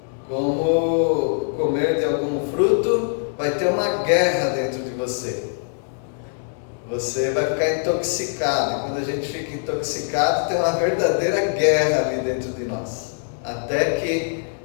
Como comer de algum fruto, vai ter uma guerra dentro de você. Você vai ficar intoxicado. E quando a gente fica intoxicado, tem uma verdadeira guerra ali dentro de nós. Até que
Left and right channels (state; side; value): silent; right; digital silence